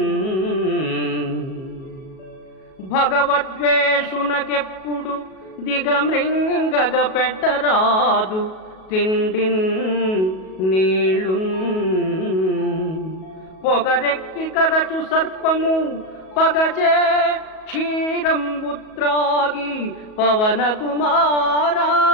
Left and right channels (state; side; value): late; right; 37 ms